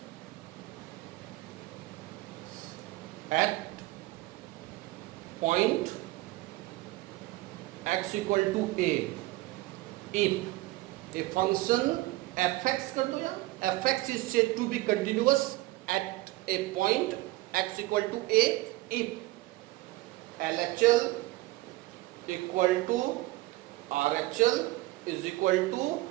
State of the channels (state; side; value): quieter; left; 19.0 dB